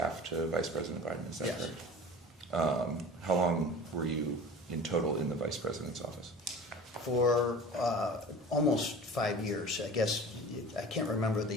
to Vice President Biden, is that Yes. correct? How long were you in total in the vice president's office? For almost 5 years. I guess, I can't remember the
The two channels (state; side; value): normal; both; correlation 0.38